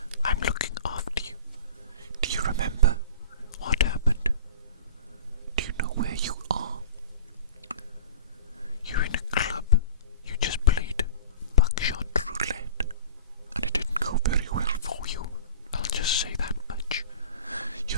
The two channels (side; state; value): both; inverted; correlation -0.39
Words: I'm looking after you. Do you remember what happened? Do you know where you are? You're in a club. You just played buckshot roulette, and it didn't go very well for you. I'll just say that much.